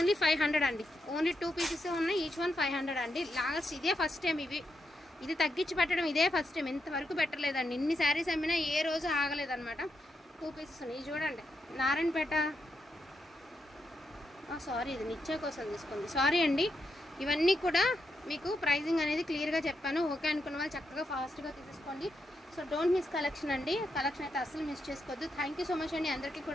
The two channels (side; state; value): both; normal; correlation 0.83